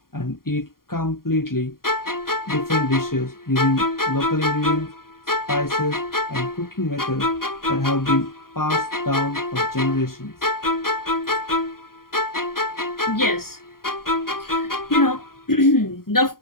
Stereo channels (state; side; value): late; right; 0.92 ms